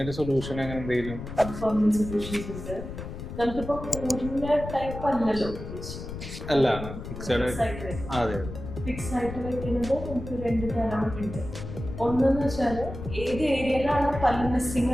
സൊല്യൂഷൻ അങ്ങനെ എന്തെങ്കിലും? പെർമനന്റ് സൊല്യൂഷൻസ് ഉണ്ട്. നമുക്കിപ്പോ പൂർണ്ണ ടൈപ്പ് അല്ലല്ലോ അല്ല, ഫിക്സഡ്. അതെ, ഫിക്സ് ആയിട്ട് വെക്കുന്നത് നമുക്ക് 2 തരം ഉണ്ട്. ഒന്നെന്ന് വെച്ചാൽ ഏത് ഏരിയയിലാണ് പല്ല് മിസ്സിംഗ്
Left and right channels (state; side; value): noise; left; rumble, 9 dB below the sound